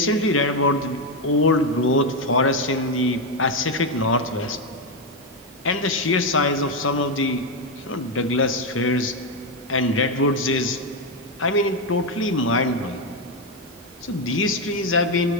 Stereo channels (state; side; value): normal; both; correlation 0.06